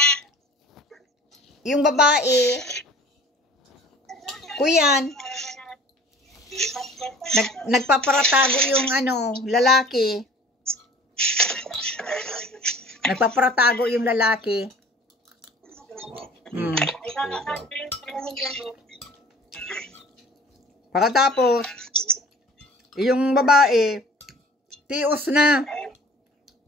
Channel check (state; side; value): normal; both; correlation 0.48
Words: Yung babae. Kuyan. Nagpaparatago yung lalaki. Nagpaparatago yung lalaki. Pagkatapos, yung babae, tios na.